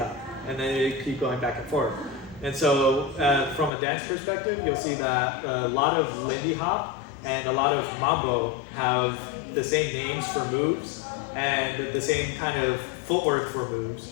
and then they keep going back and forth. And so, from a dance perspective, you'll see that a lot of Lindy Hop and a lot of mambo have the same names for moves and the same kind of footwork for moves.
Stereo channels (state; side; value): drops out; right; at 3.7 s